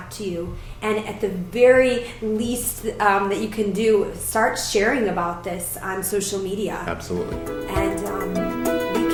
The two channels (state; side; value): identical; both; correlation 1.00